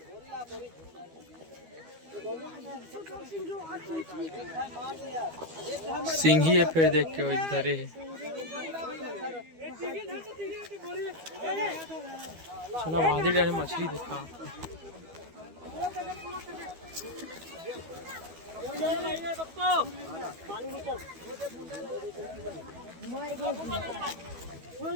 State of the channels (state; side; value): late; left; 12 ms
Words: सिंघी है। फिर देख के वो इधर है। चलो आधे जाने मछली दिखा।